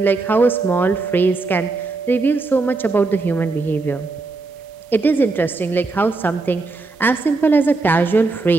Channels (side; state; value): left; quieter; 3.7 dB